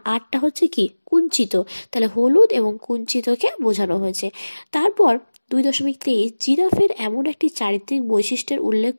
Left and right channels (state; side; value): inverted; both; correlation -1.00